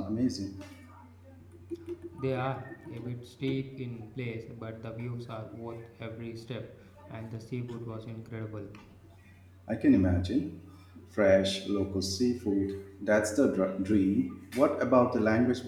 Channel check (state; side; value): identical; both; correlation 1.00